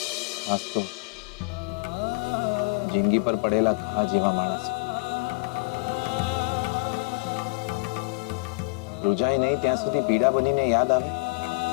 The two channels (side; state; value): right; quieter; 26.2 dB